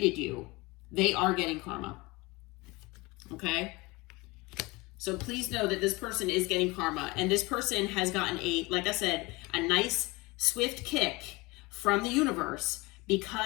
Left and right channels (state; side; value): quieter; right; 23.8 dB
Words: you, they are getting karma. Okay? So please know that this person is getting karma. And this person has gotten like I said, a nice, swift kick from the universe